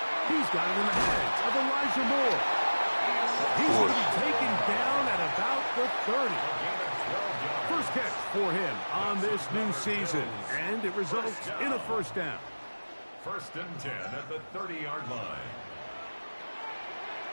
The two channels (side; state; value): both; inverted; correlation -1.00